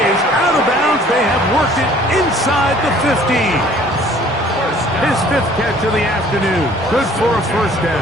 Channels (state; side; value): normal; both; correlation 0.54